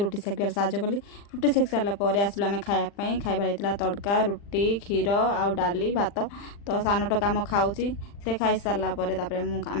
सेकिबार साहय कली रुटी सेक सारापर आसलु आम खायापाई खाइबार तड़का रुटी क्षीर आउ डाली भात तो सान टका आम खाऊँगी से खाई सारापर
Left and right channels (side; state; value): right; late; 40 ms